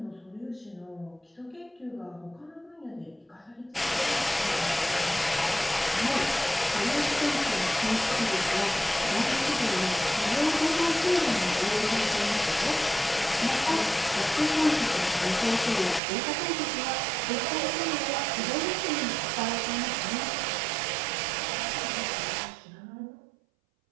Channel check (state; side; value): drops out; left; at 16.0 s